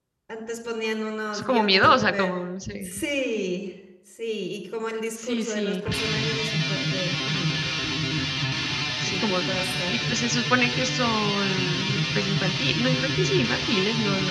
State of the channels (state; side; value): identical; both; correlation 1.00